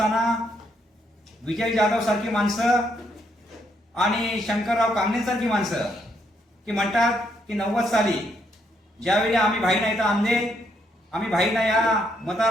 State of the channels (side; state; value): both; normal; correlation 0.74